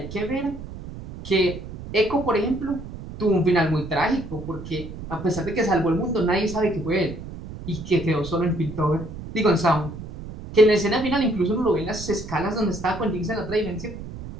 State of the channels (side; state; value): right; noise; rumble, 11 dB below the sound